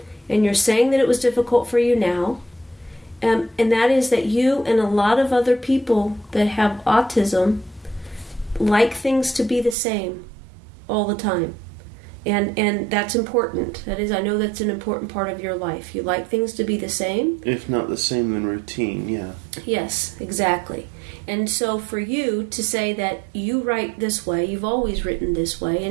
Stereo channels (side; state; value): left; drops out; at 9.8 s